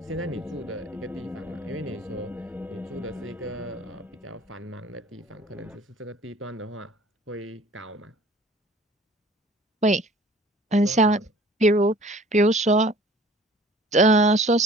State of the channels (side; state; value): both; normal; correlation 0.50